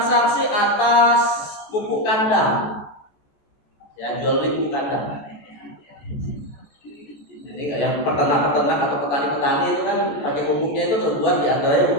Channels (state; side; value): late; right; 14 ms